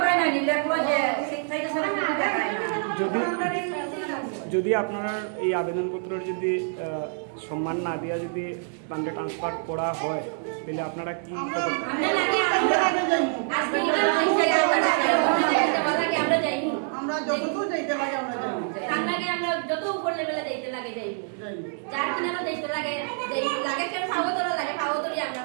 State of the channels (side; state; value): left; silent; 61 dB below the other